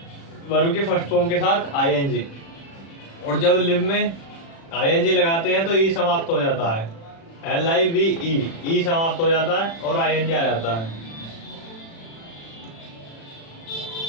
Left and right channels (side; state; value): right; late; 36 ms